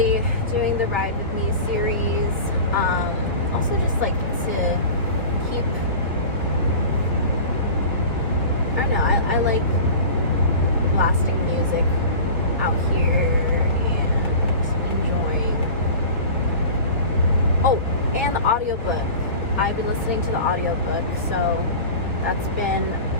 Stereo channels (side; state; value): both; inverted; correlation -0.35